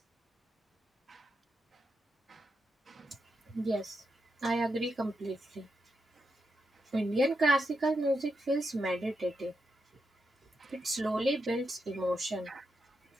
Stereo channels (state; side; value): normal; both; correlation 0.85